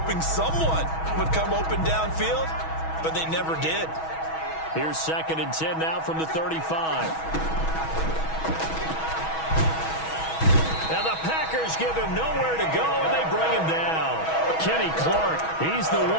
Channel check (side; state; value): right; late; 6.2 ms